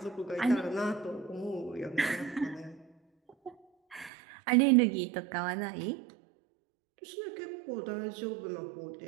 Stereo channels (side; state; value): left; drops out; at 4.1 s